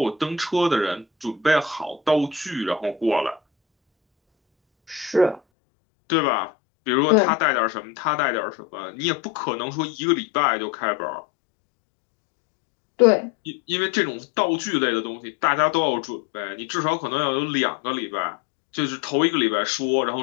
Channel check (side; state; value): right; drops out; at 5.4 s